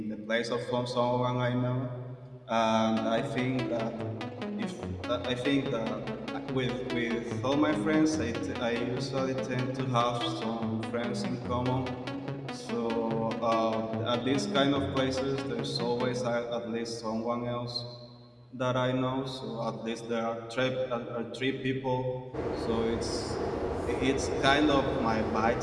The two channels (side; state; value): both; identical; correlation 1.00